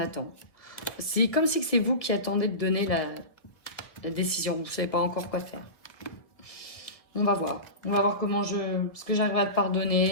C'est comme si c'est vous qui attendez de donner la décision. Vous ne savez pas encore quoi faire. On va voir. On va voir comment ce que j'arriverai à te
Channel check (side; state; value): right; late; 1.5 ms